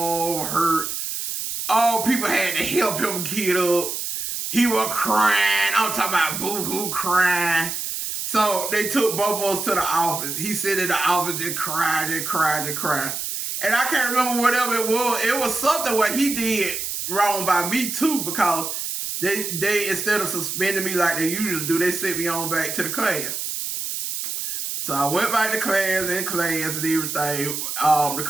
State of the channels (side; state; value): right; noise; hiss, 4 dB below the sound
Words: hurt. People had to help him get up. He was crying. I'm talking about boo-hoo crying. So they took both of us to the office. He said in the office, just cried. And I can't remember whatever it was. It was something what he did wrong by me too, because they instead of suspending me like they usually do, they sent me on back to the class. So I went back to class and everything. The